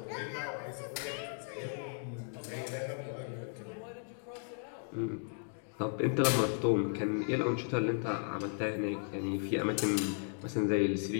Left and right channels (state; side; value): silent; right; 54 dB below the other